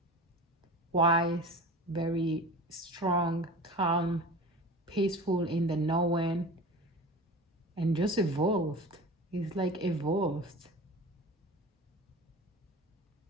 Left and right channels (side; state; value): both; normal; correlation 0.35